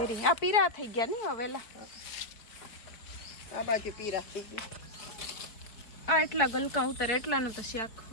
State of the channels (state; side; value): late; right; 4.6 ms